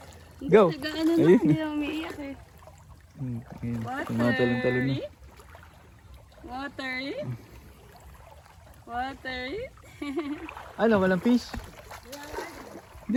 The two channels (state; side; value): identical; both; correlation 1.00